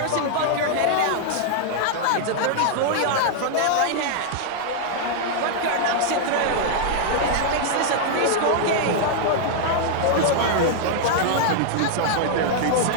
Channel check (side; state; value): both; different; correlation -0.01